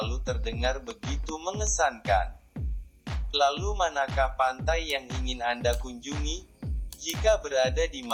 terdengar begitu mengesankan. Lalu manakah pantai yang ingin Anda kunjungi? Jika berada di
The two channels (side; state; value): both; identical; correlation 1.00